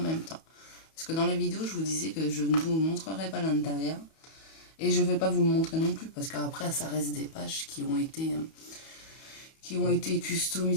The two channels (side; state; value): right; late; 31 ms